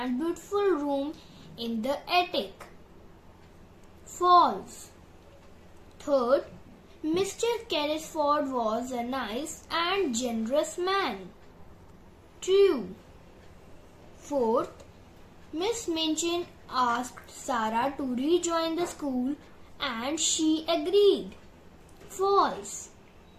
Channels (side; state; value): both; identical; correlation 1.00